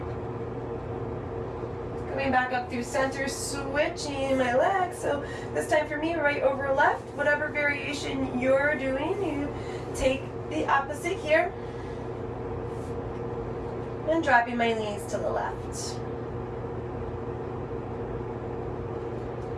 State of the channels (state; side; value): identical; both; correlation 1.00